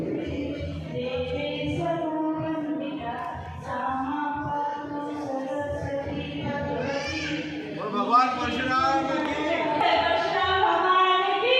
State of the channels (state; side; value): identical; both; correlation 1.00